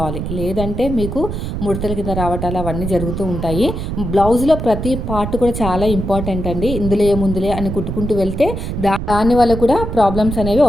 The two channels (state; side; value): noise; right; rumble, 5 dB below the sound